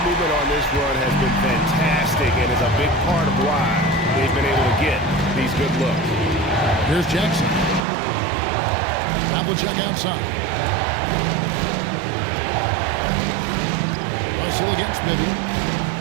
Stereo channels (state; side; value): drops out; left; at 7.8 s